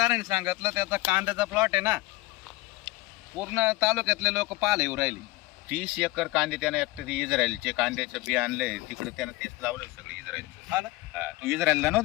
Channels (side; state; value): right; quieter; 20.8 dB